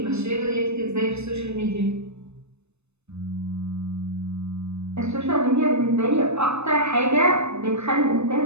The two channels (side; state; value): left; late; 0.81 ms